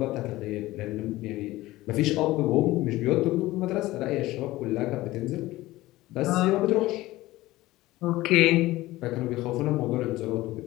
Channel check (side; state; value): right; quieter; 17.8 dB